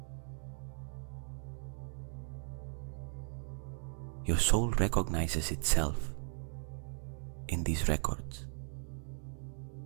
Your soul recognizes itself in these records.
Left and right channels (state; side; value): silent; left; 53 dB below the other